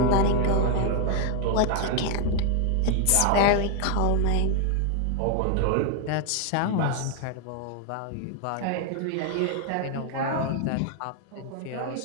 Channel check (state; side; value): different; both; correlation 0.00